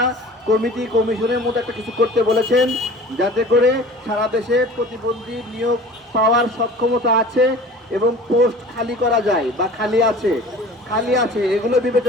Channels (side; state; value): both; normal; correlation 0.42